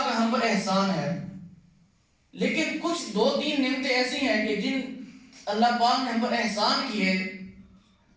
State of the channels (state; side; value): identical; both; correlation 1.00